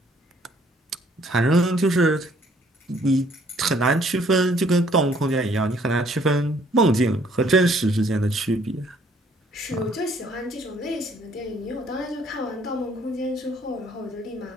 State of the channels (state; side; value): normal; both; correlation 0.62